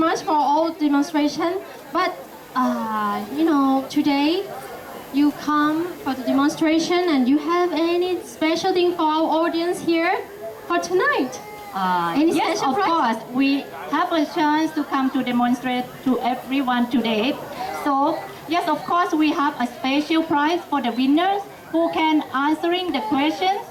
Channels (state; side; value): identical; both; correlation 1.00